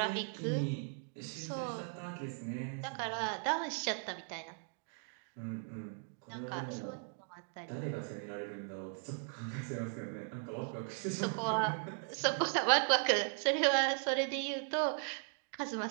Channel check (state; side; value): silent; left; 53 dB below the other